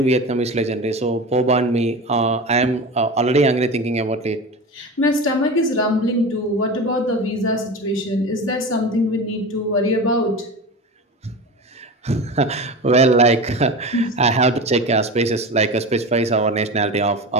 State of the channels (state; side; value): normal; both; correlation 0.28